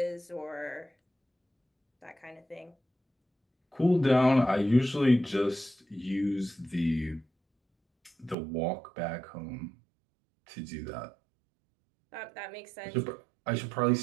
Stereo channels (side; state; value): left; drops out; at 8.3 s